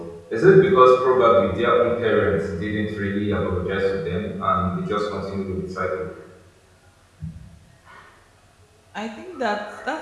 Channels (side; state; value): both; identical; correlation 1.00